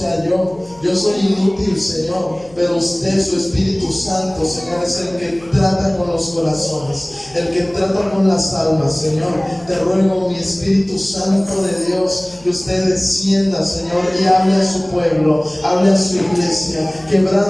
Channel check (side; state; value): left; noise; hum, 25 dB below the sound